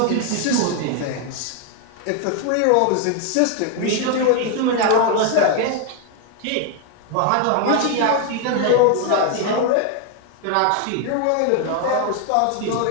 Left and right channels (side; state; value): both; different; correlation 0.00